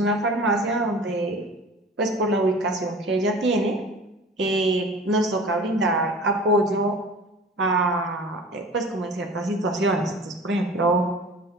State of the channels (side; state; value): both; normal; correlation 0.41